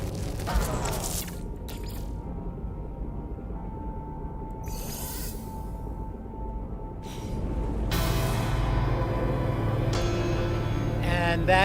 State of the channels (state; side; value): identical; both; correlation 1.00